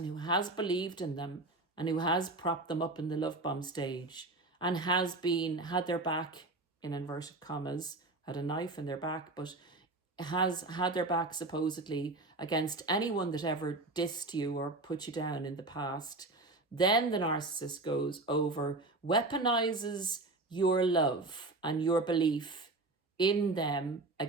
who has believed in them and who has propped them up in the love bomb stage and has had their back, in inverted commas, had a knife in their back, but has had their back supposedly against anyone that ever dissed you or put you down in the past, then the narcissist goes over, weaponizes your love and your belief in them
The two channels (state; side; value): quieter; left; 3.0 dB